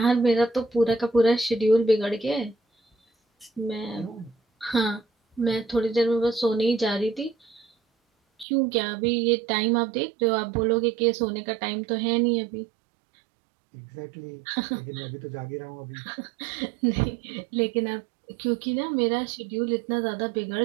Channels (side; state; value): left; drops out; at 8.5 s